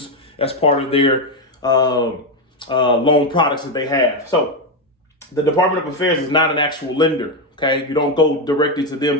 as part of their loan products that they have. So the Department of Affairs is not an actual lender, okay? You don't go directly to them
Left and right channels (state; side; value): normal; both; correlation 0.07